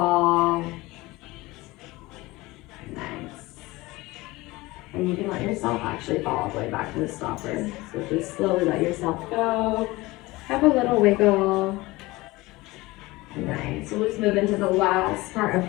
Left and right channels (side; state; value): right; quieter; 20.7 dB